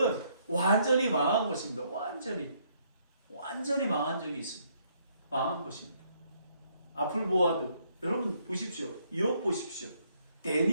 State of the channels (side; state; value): both; inverted; correlation -0.70